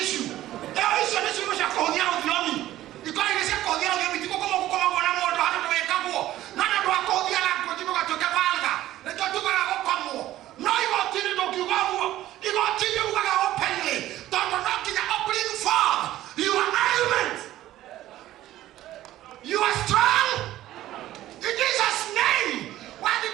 issue icio ni ciugo cia kuhuthia uthiomi ikora ni cia kuhuthia uthiomi tigukomagwo na mundu handu wekagwo na ndu akuhuthia na nguo tugatuika valga nikio tugaga gukomwo no igotini ndukiugaguo igotini ugaga openly tondu no nginya bring forth your argument. You are strong in Jesus' name. Wadi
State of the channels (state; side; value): quieter; left; 14.4 dB